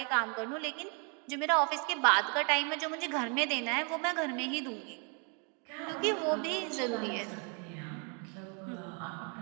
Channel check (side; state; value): left; quieter; 36.2 dB